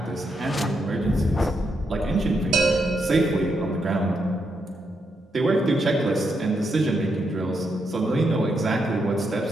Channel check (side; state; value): both; normal; correlation 0.81